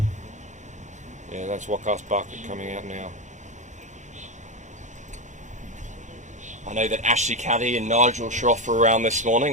Yeah, that's Wakas Barkat coming out now. I know that Ashley Caddy and Nigel Shroff were around this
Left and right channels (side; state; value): both; normal; correlation 0.13